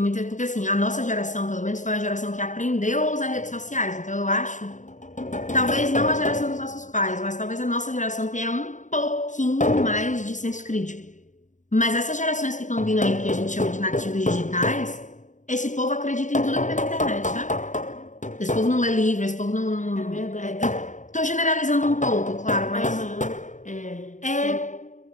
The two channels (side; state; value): right; late; 0.36 ms